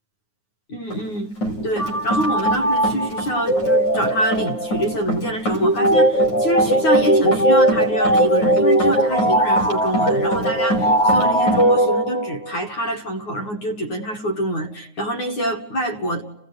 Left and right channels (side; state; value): right; late; 9.5 ms